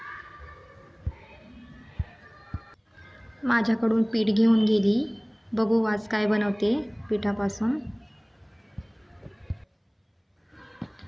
माझ्याकडून पीठ घेऊन गेली. बघू आज काय बनवते पिठापासून.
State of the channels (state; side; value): identical; both; correlation 1.00